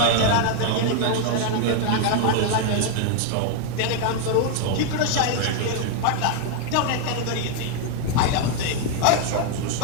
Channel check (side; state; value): both; different; correlation 0.01